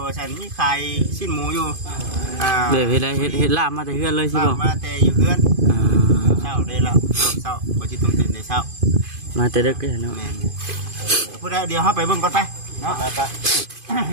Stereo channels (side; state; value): left; late; 2.5 ms